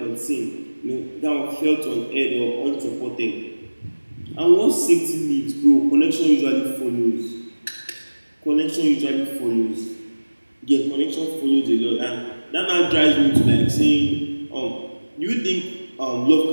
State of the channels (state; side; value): inverted; both; correlation -1.00